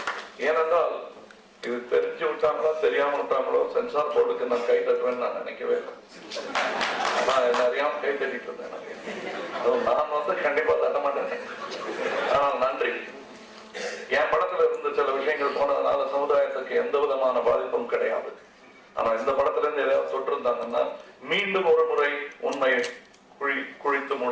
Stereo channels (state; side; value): identical; both; correlation 1.00